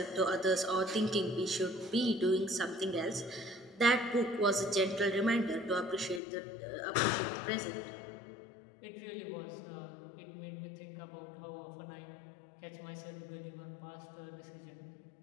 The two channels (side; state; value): right; drops out; at 6.2 s